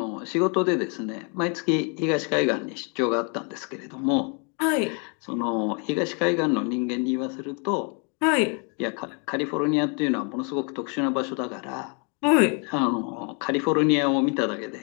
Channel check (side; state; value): right; quieter; 36.8 dB